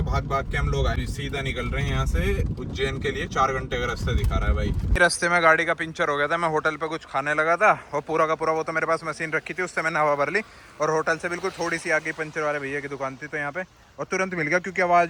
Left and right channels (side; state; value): both; identical; correlation 1.00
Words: भाग भाग के हम लोग आए, सीधा निकल रहे हैं यहाँ से उज्जैन के लिए। 4 घंटे का रास्ता दिखा रहा है भाई। रास्ते में गाड़ी का पंचर हो गया था, मैं होटल पे कुछ खाने लगा था और पूरा का पूरा वो तो मेरे पास मशीन रखी थी, उससे मैंने हवा भर ली। और होटल से बिल्कुल थोड़ी सी आगे पंचर वाले भैया की दुकान थी, तो यहाँ पे और तुरंत मिल गया क्योंकि